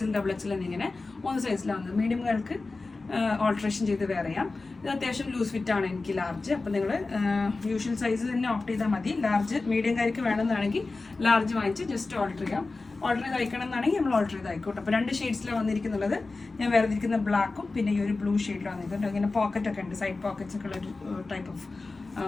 ഡബിൾ എക്സൽ എന്നിങ്ങനെ 3 സൈസിലാണ് വന്നത്. മീഡിയംകാർക്ക് ഓൾട്രേഷൻ ചെയ്ത് വെയർ ചെയ്യാം. ഇത് അത്യാവശ്യം ലൂസ് ഫിറ്റ് ആണ് എനിക്ക് ലാർജ്. അപ്പം നിങ്ങൾ യൂഷ്വൽ സൈസ് തന്നെ ഓപ്റ്റ് ചെയ്താൽ മതി. ലാർജ് മീഡിയംകാർക്ക് വേണമെന്നാണെങ്കിൽ ലാർജ് വാങ്ങിച്ച് ജസ്റ്റ് ഓൾട്ടർ ചെയ്യാം. ഓൾട്ടർ ചെയ്ത് അയക്കണം എന്നാണെങ്കിൽ നമ്മൾ ഓൾട്ടർ ചെയ്ത് ആയിക്കോട്ടെ. അപ്പോൾ 2 ഷെയ്ഡ്സിലാണ് വന്നിരിക്കുന്നത്. ഞാൻ വേർതിരിക്കുന്ന ബ്ലാക്കും പിന്നെ ഈ ഒരു ബ്ലൂ ഷെയ്ഡിലാണ് വന്നിരിക്കുന്നത്. ഇങ്ങനെ പോക്കറ്റൊക്കെ ഉണ്ട്, സൈഡ് പോക്കറ്റ്സ് ഒക്കെ ഉള്ളൊരു ടൈപ്പ് ഓഫ്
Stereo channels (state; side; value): quieter; right; 3.6 dB